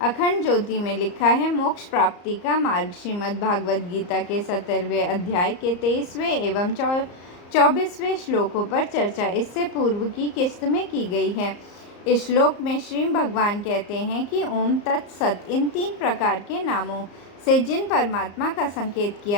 अखंड ज्योति में लिखा है मोक्ष प्राप्ति का मार्ग। श्रीमद् भागवत गीता के 17वें अध्याय के 23वें एवं 24वें श्लोकों पर चर्चा इससे पूर्व की किस्त में की गई है। इस श्लोक में श्री भगवान कहते हैं कि ओम तत्सत इन 3 प्रकार के नामों से जिन परमात्मा का संकेत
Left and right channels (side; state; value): right; late; 34 ms